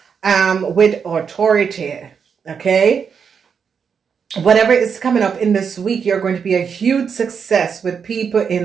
with authority, okay? Whatever is coming up in this week, you're going to be a huge success with people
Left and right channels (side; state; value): left; quieter; 6.6 dB